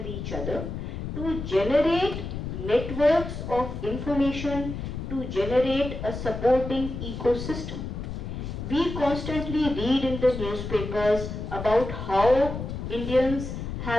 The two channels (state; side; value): noise; left; rumble, 6 dB below the sound